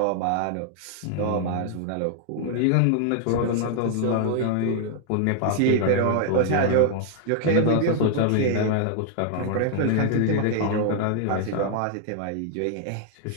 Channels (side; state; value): both; different; correlation 0.00